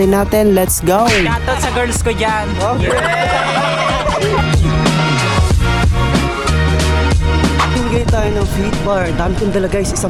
natin? Let's go! Shoutout sa girls ko dyan. Okay. Mamimigay tayo ng fit bar. Dami kong dala guys,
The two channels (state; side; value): identical; both; correlation 1.00